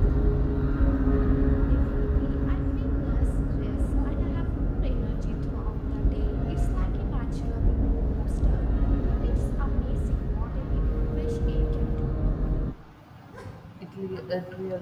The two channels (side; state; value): both; identical; correlation 1.00